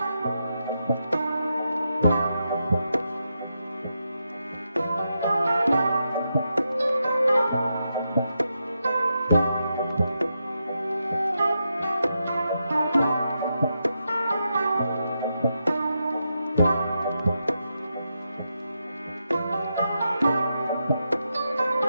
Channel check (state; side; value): inverted; both; correlation -0.85